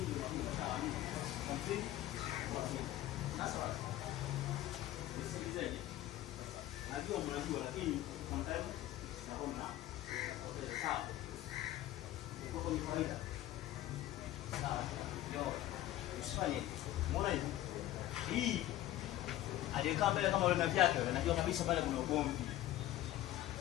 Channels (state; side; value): quieter; right; 14.3 dB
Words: Najua mnajua lakini sometimes tunaona okay sawa. Uko kwa kawaida. Sawa. Yo. Usifanye. Umeona hivi? Hii aliyekaa mbele kama yule vyake yule najua kabisa pale kuna ugomvi.